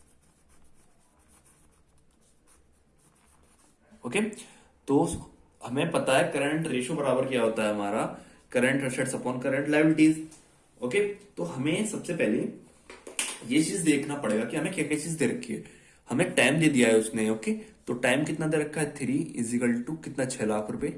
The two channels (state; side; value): identical; both; correlation 1.00